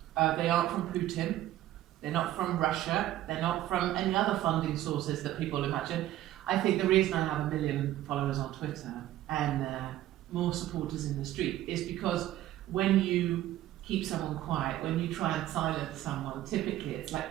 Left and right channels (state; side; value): quieter; left; 13.9 dB